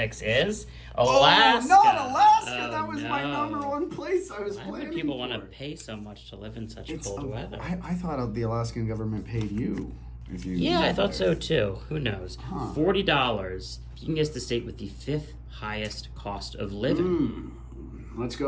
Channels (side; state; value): both; identical; correlation 1.00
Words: is Alaska. Oh, not Alaska. Oh, That was my no. number one place I was Why planning would people want to for. pay so much to live in such It's, cold weather? I thought the Alaskan government paid you. If you Yeah, I lived thought there. so too. Who knows? Huh. $40. You can guess the state with the 5th highest cost of living. Let's